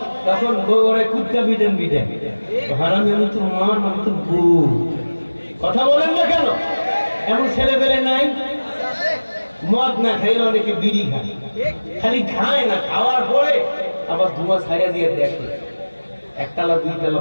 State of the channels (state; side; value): inverted; both; correlation -1.00